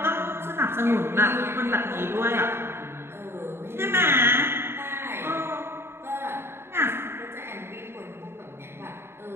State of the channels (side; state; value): left; late; 0.11 ms